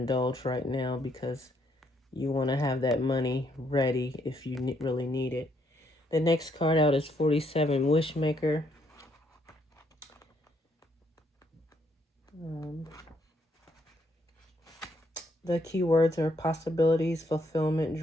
right now because you want to have that money ready if you really need it. The next card out is 47, Wishmaker. The keywords are possibilities, fulfillment,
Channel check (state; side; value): normal; both; correlation 0.72